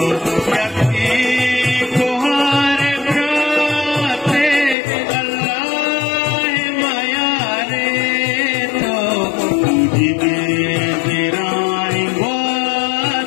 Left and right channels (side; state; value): right; drops out; at 4.8 s